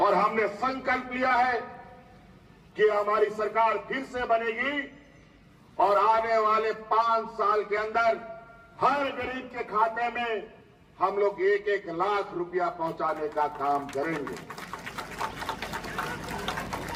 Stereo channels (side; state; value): both; identical; correlation 1.00